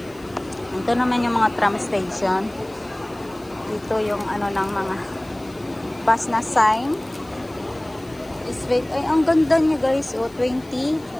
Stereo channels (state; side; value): noise; left; hiss, 27 dB below the sound